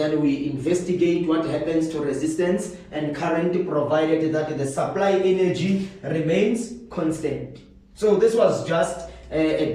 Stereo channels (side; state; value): both; identical; correlation 1.00